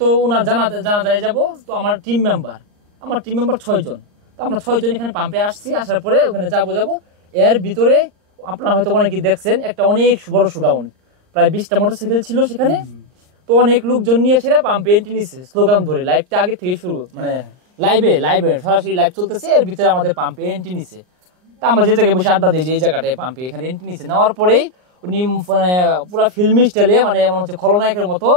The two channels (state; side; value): late; left; 39 ms